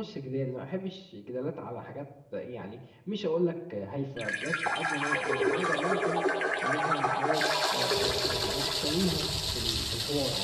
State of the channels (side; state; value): both; identical; correlation 1.00